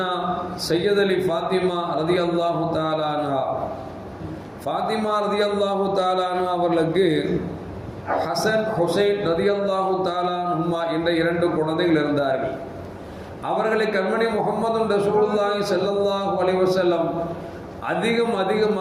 அலி ஃபாத்திமா ரலியல்லாஹு தஆலா அன்ஹா, ஃபாத்திமா ரலியல்லாஹு தஆலா அன்ஹா அவர்களுக்கு ஹசன் ஹுசைன் ரலியல்லாஹு தஆலா அன்ஹுமா என்ற இரண்டு குழந்தைகள் இருந்தார்கள். அவர்களை கண்மணி முஹம்மது ரசூலுல்லாஹி ஸல்லல்லாஹு அலைஹி வஸல்லம்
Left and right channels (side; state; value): both; identical; correlation 1.00